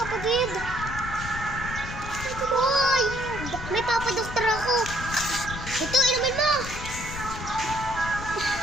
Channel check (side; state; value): left; noise; rumble, 9 dB below the sound